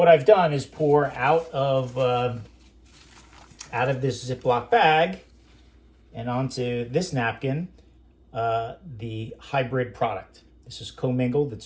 I've done is pour out of this Ziploc bag and onto this napkin the hybrid product. This is commingled.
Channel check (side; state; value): both; identical; correlation 1.00